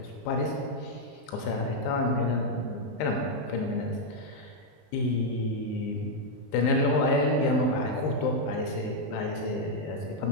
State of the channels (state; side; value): late; right; 19 ms